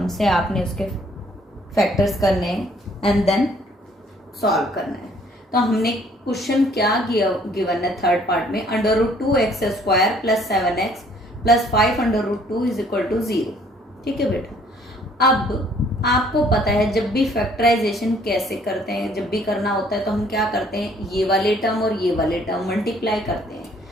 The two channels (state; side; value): normal; both; correlation 0.61